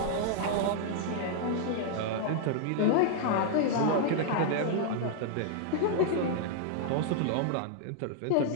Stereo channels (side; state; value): both; different; correlation -0.01